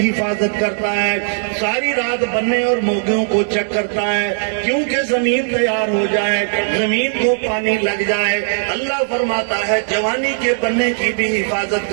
حفاظت کرتا ہے، ساری رات بننے اور موگوں کو چیک کرتا ہے کیونکہ زمین تیار ہو جائے، زمین کو پانی لگ جائے. اللہ فرماتا ہے جوانی کے بننے کی بھی حفاظت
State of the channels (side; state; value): left; silent; digital silence